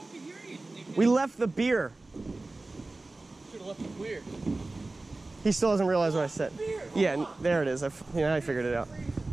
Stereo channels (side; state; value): left; quieter; 3.1 dB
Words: hear you. We left the beer. Should have left the beer. He still doesn't realize what I said. Beer. Yeah, there it is. I figured it out.